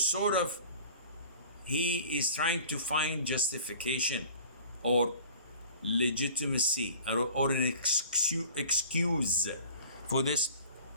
of he is trying to find justification or legitimacy or an excuse for this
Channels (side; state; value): both; inverted; correlation -0.45